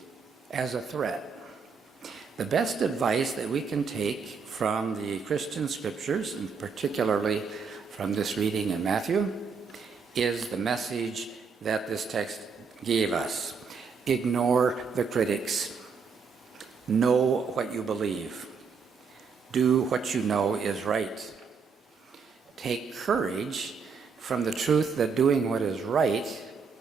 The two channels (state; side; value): quieter; left; 5.5 dB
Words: as a threat. The best advice that we can take from the Christian scriptures, and particularly from this reading in Matthew, is the message that this text gave us. Ignore the critics. Know what you believe. Do what you know is right. Take courage from the truth that doing what is right